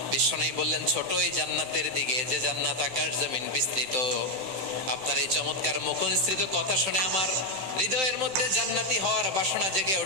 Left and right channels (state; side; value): late; left; 16 ms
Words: বিশ্বনবী বললেন, ছোট এই জান্নাতের দিকে, যে জান্নাত আকাশ জমিন বিস্তৃত। আপনার এই চমৎকার মুখনিসৃত কথা শুনে আমার হৃদয়ের মধ্যে জান্নাতি হওয়ার বাসনা জেগে